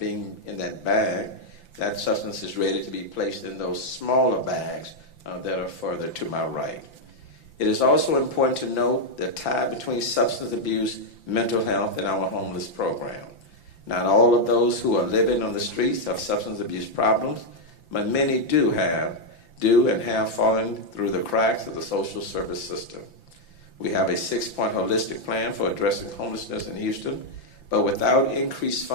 bag, that substance is ready to be placed in those smaller bags that are further to my right. It is also important to note the tie between substance abuse, mental health, and our homeless program. Not all of those who are living on the streets have substance abuse problems, but many do and have fallen through the cracks of the social service system. We have a 6-point holistic plan for addressing homelessness in Houston, but without increased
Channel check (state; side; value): late; right; 5.9 ms